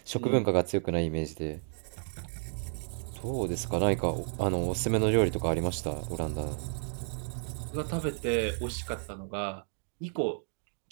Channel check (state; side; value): silent; left; digital silence